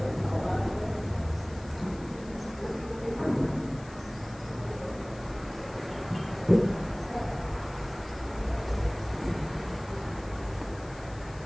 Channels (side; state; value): left; noise; hiss, 22 dB below the sound